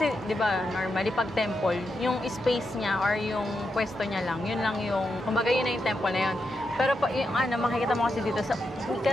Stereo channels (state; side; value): normal; both; correlation 0.85